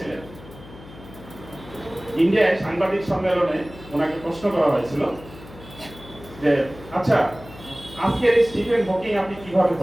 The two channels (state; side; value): noise; left; hum, 18 dB below the sound